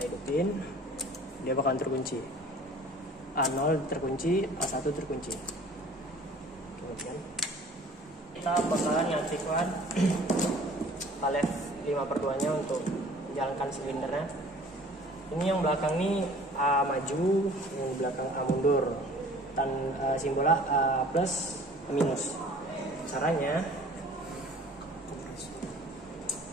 hidupin, dia bakalan terkunci. A0 terkunci, A1 terkunci. Kemudian kita bakalan nyaktifkan palet 5/2 nya untuk menjalankan silindernya. Ini yang belakang nih A maju, yang belakang A mundur. Dan simbolnya A plus, A minus. Caranya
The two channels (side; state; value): both; normal; correlation 0.49